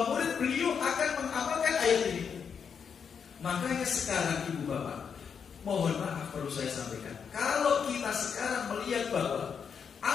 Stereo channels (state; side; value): quieter; right; 6.8 dB